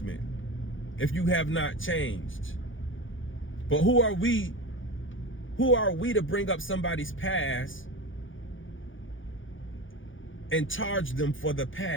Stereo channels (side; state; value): right; late; 0.57 ms